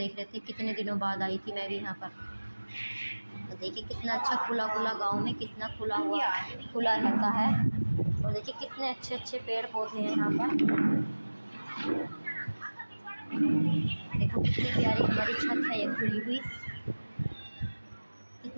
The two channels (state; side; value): inverted; both; correlation -1.00